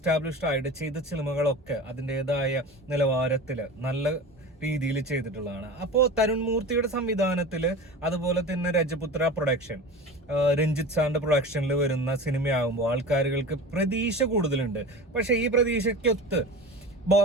ആയിട്ട് ചെയ്ത സിനിമകളൊക്കെ അതിൻ്റെതായ നിലവാരത്തില് നല്ല രീതിയിൽ ചെയ്തിട്ടുള്ളതാണ്. അപ്പോൾ തരുൺ മൂർത്തിയുടെ സംവിധാനത്തിൽ, അതുപോലെ തന്നെ രജപുത്ര പ്രൊഡക്ഷൻ, രഞ്ജിത്ത് സാറിന്റെ പ്രൊഡക്ഷനിൽ വരുന്ന സിനിമയാകുമ്പോൾ ആൾക്കാരുകൾക്ക് പ്രതീക്ഷ കൂടുതലുണ്ട്. പക്ഷെ ഈ പ്രതീക്ഷയ്ക്കൊത്ത്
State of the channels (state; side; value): normal; both; correlation 0.32